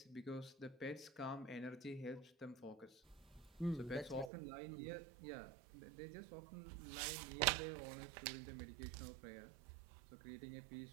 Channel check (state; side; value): drops out; left; at 4.3 s